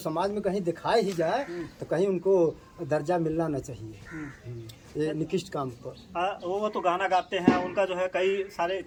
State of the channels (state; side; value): identical; both; correlation 1.00